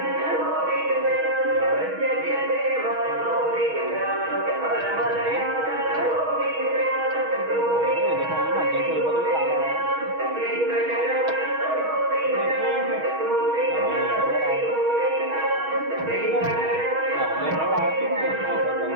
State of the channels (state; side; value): late; left; 6.3 ms